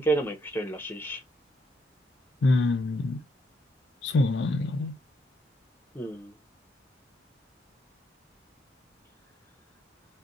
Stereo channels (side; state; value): both; normal; correlation 0.76